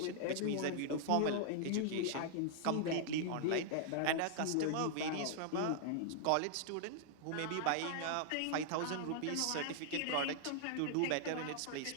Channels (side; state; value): both; different; correlation -0.01